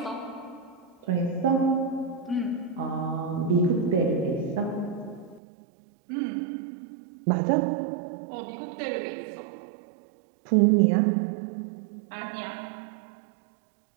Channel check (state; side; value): drops out; left; at 5.4 s